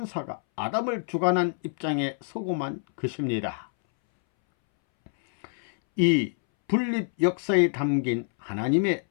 아담을 주관한 입장에 서고만 것입니다. 이 분립 역사에 담긴 하나님의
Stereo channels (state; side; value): silent; right; 61 dB below the other